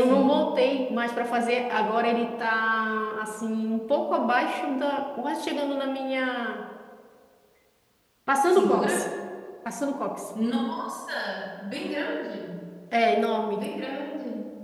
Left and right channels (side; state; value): both; identical; correlation 1.00